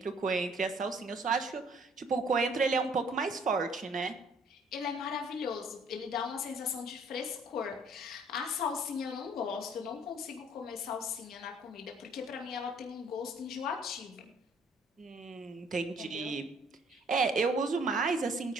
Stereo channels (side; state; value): both; normal; correlation 0.59